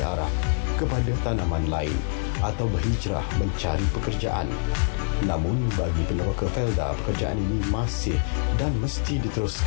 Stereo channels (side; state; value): right; silent; 62 dB below the other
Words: arah kepada tanaman lain atau berhijrah mencari pekerjaan. Namun bagi peneroka Felda, pekerjaan ini masih dan mesti